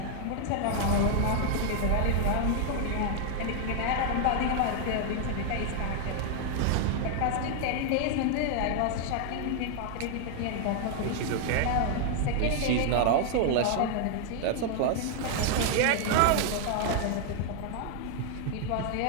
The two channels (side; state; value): both; different; correlation 0.00